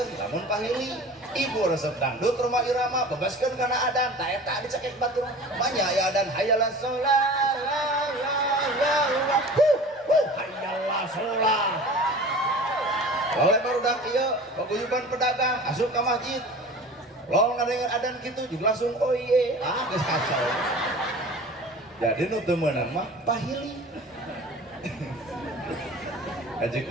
lamun pahili ibu resep dangdut rumah irama bebaskeun kana adan ta eta dicekek batur manya aya adan hayalah sholat la la la la hayalah sholat. Oleh barudak ieu paguyuban pedagang asup ka masjid lalu ngadengar adan kitu juga langsung oh iye geus kacau. Jadi nu teu meunang mah pahili. Haji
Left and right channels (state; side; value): normal; both; correlation 0.40